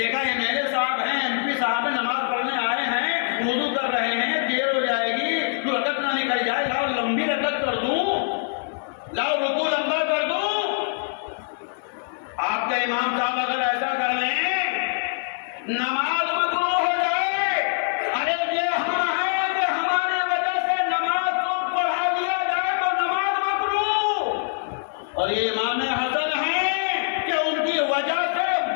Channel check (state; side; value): silent; right; digital silence